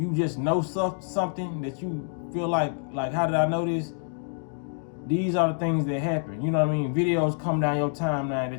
just know something that you feel like how did I know this? These are the things that happen. You know what I mean? Videos come down your timeline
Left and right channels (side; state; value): right; silent; digital silence